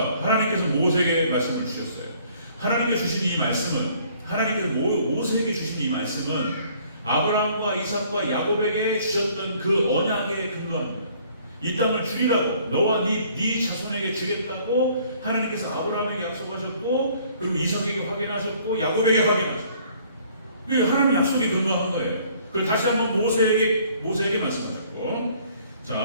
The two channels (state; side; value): inverted; both; correlation -0.59